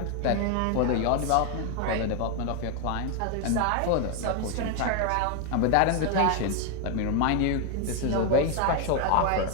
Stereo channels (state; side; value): different; both; correlation 0.01